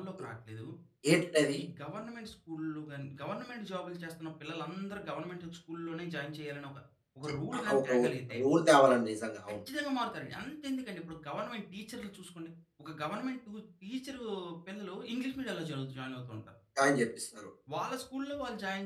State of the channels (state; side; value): identical; both; correlation 1.00